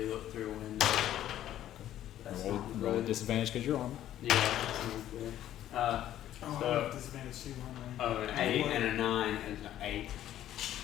looked through a window. That's Roll, not roll a good. disadvantage because you're armed. Yeah, that's not good. Oh, So- I have disadvantage too, aren't I? An 8 and a 9 is an 8.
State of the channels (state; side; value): quieter; right; 12.2 dB